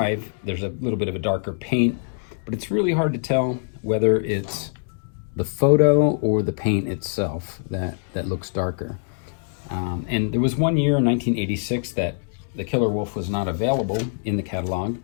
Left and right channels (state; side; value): silent; right; 63 dB below the other